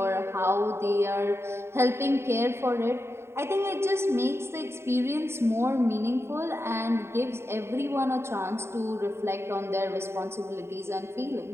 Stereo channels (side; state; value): left; late; 0.12 ms